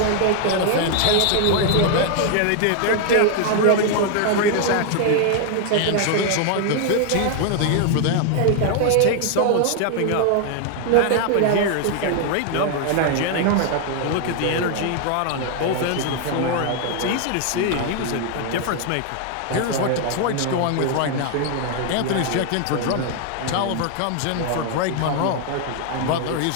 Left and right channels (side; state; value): both; different; correlation 0.00